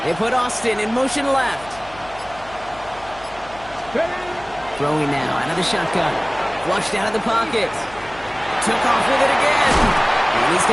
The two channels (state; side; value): noise; left; hum, 21 dB below the sound